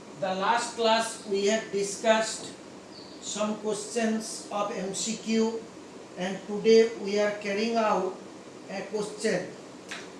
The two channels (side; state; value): both; identical; correlation 1.00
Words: The last class we have discussed some questions of MCQ and today we are carrying out a question.